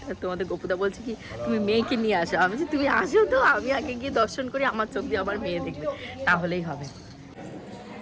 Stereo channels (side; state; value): both; identical; correlation 1.00